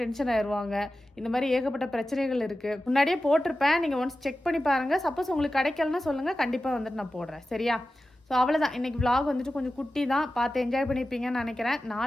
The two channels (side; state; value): both; normal; correlation 0.94